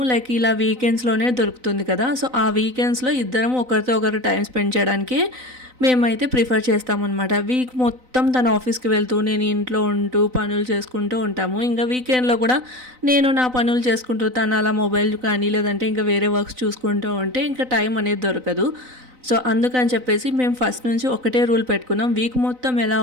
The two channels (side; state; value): left; late; 4.0 ms